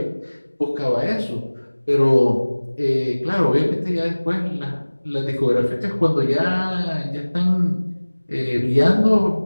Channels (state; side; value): inverted; both; correlation -1.00